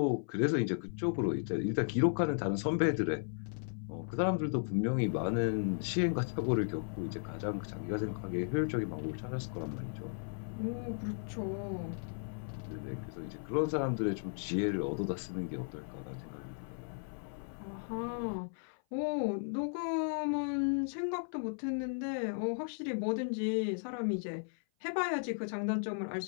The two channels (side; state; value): right; silent; 54 dB below the other